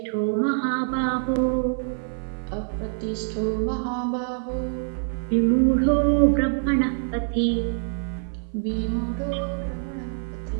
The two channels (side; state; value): left; silent; 55 dB below the other